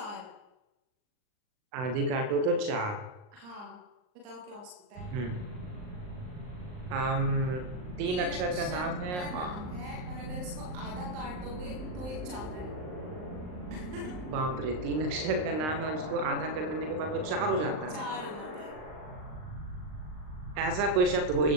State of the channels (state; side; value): late; left; 39 ms